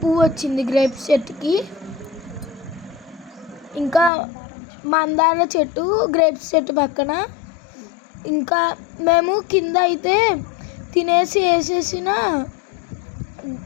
వచ్చింది గ్రేప్స్ చెట్టుకి. ఇంకా మందార చెట్టు గ్రేప్స్ చెట్టు పక్కన. ఇంకా మేము కింద అయితే తినేసి వేసేసిన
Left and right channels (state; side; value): drops out; right; at 4.1 s